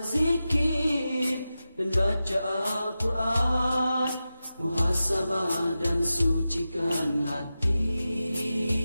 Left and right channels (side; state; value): both; inverted; correlation -0.93